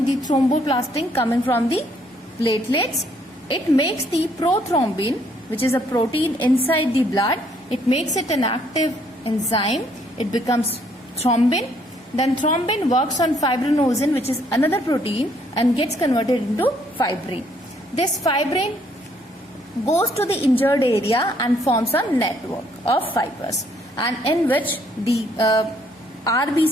the thromboplastin coming from the platelets. It makes the prothrombin, which is a protein inside the blood. It makes it an active enzyme. It becomes thrombin. Then thrombin works on fibrinogen, which is another protein, and gets converted into fibrin. This fibrin goes to the injured area and forms a network of fibers, and in which the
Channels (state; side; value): normal; both; correlation 0.67